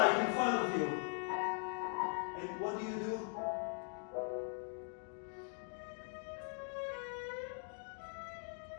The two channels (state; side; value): silent; right; 50 dB below the other